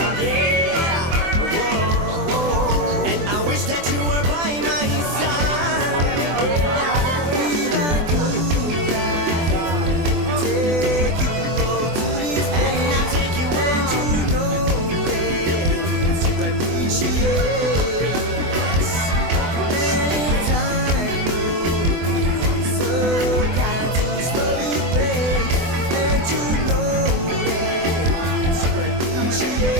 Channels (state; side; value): late; left; 24 ms